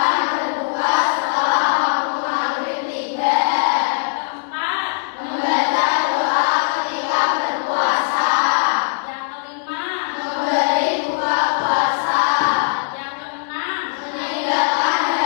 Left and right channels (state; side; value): silent; right; digital silence